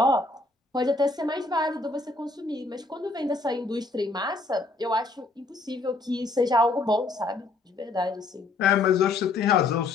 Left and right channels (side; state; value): right; quieter; 3.4 dB